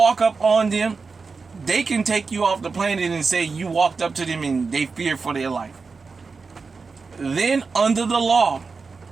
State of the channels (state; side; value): quieter; left; 4.6 dB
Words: up on them, they can take you off the planet and say you walked up to them and they fear for their life. Then under the law,